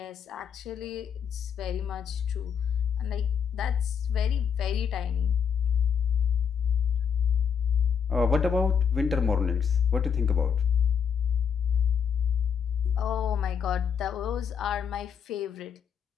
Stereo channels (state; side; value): quieter; right; 7.1 dB